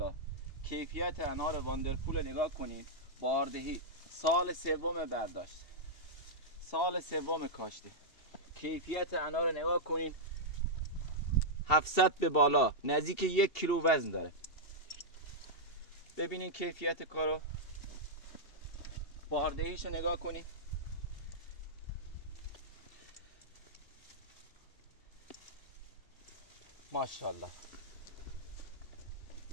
کیفیت انار واندرفول نگاه کنید. باردهی، سال سوم برداشت، سال سوم کاشته. کیفیت انار نگاه کنید، 700 به بالا، نزدیک 1 کیلو وزن داره. ببینید کیفیت کارو، باردهیش نگاه کنید. ماشاءالله.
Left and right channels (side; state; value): right; late; 2.7 ms